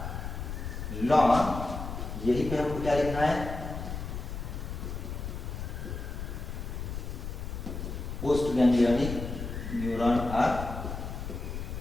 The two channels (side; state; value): left; noise; rumble, 6 dB below the sound